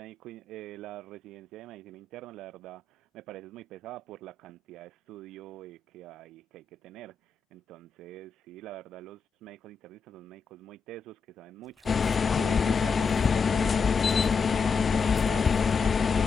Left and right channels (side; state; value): right; quieter; 5.1 dB